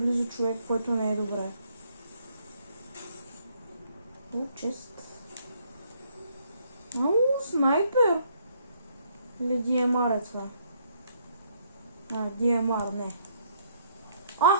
човек, който не е добре. Чест. Снайпер! Или DMR е това? DMR, не.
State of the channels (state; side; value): inverted; both; correlation -0.68